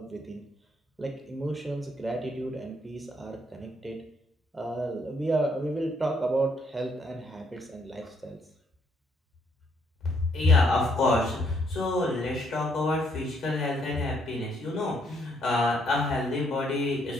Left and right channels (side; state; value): both; normal; correlation 0.71